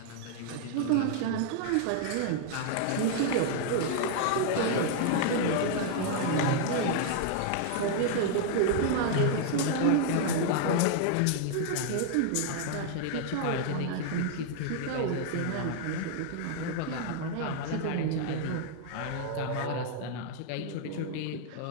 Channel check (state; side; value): different; both; correlation -0.01